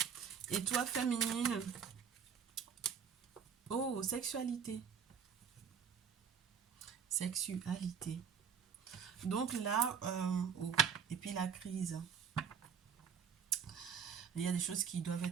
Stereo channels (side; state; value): left; quieter; 7.1 dB